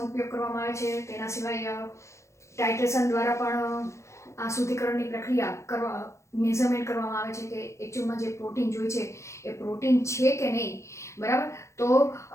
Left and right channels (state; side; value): late; right; 0.14 ms